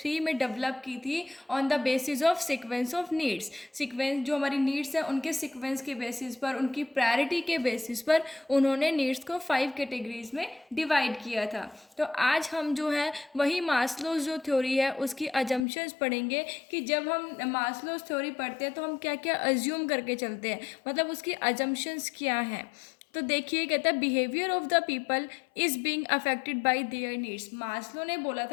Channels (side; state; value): right; drops out; at 15.7 s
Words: में डेवलप की थी on the basis of sequence of needs. Sequence जो हमारी नीड्स है उनके सीक्वेंस के बेसिस पर, उनकी प्रायोरिटी के बेसिस पर उन्होंने नीड्स को 5 कैटेगरीज में डिवाइड किया था। तो आज हम जो है वही मास्लोज जो थ्योरी है उसकी अजम्पशंस पढ़ेंगे कि जब हम मास्लोज थ्योरी पढ़ते हैं तो हम क्या क्या अज्यूम करके चलते हैं, मतलब उसकी अजम्पशंस क्या हैं। तो देखिए, कहता है behaviour of the people is being affected by there needs. Maslow ने बोला